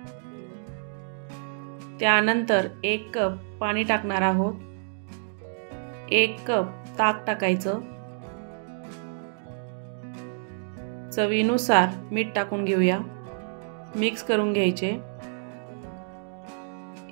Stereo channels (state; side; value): silent; left; digital silence